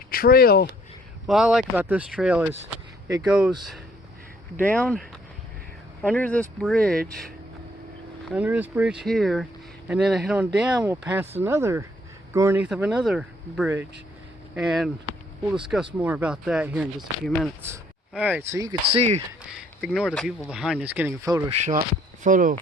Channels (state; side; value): normal; both; correlation 0.64